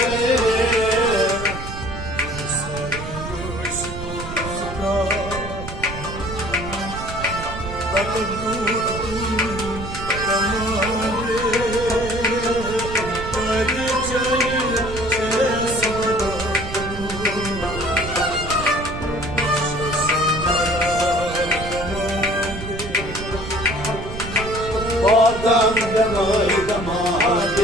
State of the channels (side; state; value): right; noise; rumble, 9 dB below the sound